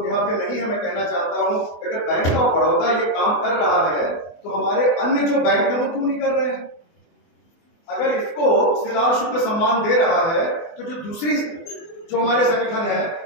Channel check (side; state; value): right; late; 24 ms